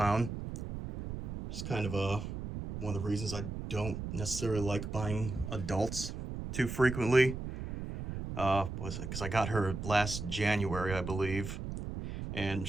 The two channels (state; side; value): noise; right; rumble, 6 dB below the sound